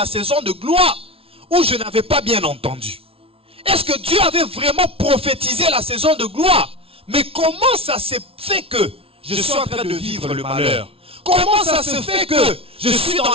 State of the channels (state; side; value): late; left; 0.27 ms